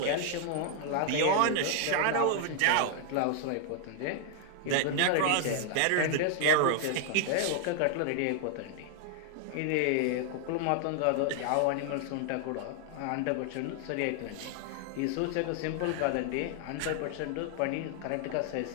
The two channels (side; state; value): both; different; correlation 0.00